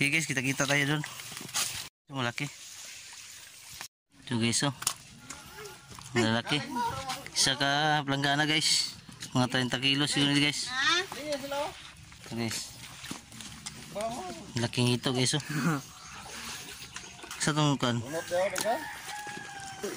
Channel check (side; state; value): both; identical; correlation 1.00